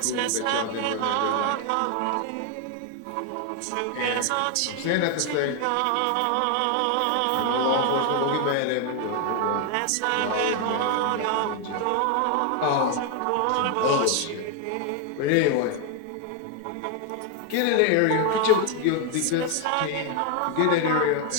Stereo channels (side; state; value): both; different; correlation 0.01